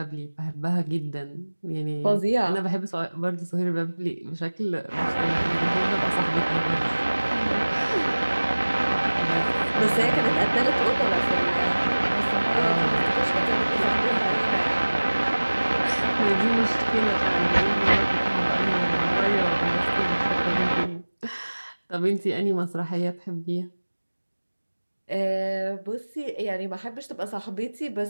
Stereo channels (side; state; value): both; inverted; correlation -1.00